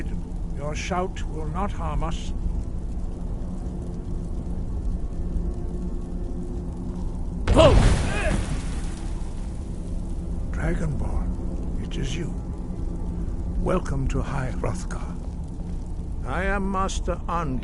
Your shout will not harm us. Dragonborn, it is you. Welcome to High Hrothgar. I am Master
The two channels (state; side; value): identical; both; correlation 1.00